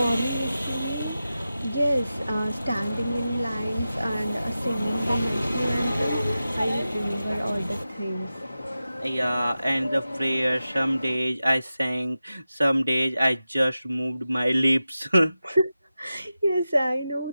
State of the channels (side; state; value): both; inverted; correlation -0.93